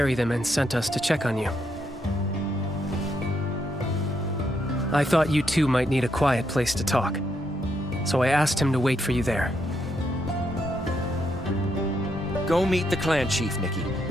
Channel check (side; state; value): both; normal; correlation 0.78